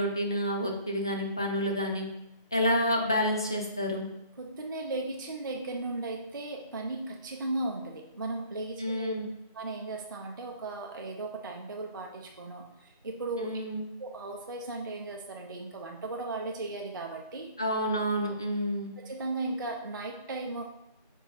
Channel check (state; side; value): inverted; both; correlation -0.52